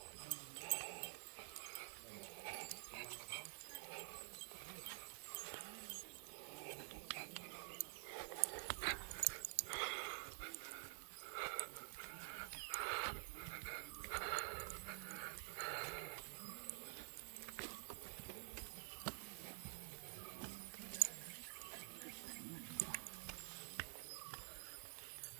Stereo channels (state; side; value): silent; left; digital silence